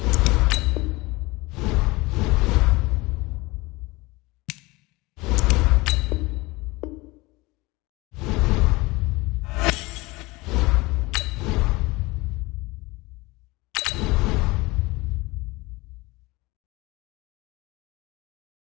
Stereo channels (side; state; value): right; quieter; 22.5 dB